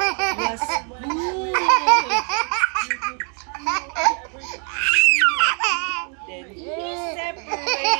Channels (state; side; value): quieter; left; 39.4 dB